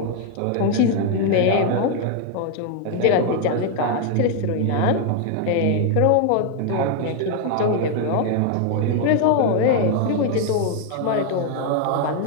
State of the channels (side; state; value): both; different; correlation 0.00